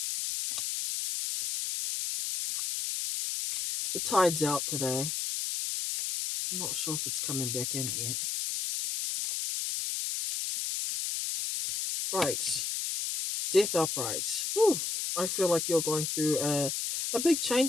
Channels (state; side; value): noise; left; hiss, 2 dB below the sound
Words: The tide's out today. I'm not sure if it's coming back in yet. Right. Death upright. Whew. I feel like you're going through a big